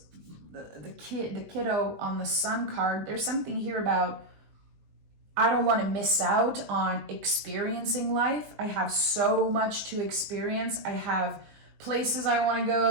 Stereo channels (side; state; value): left; late; 20 ms